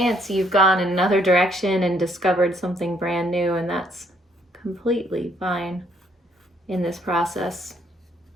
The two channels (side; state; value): both; normal; correlation 0.68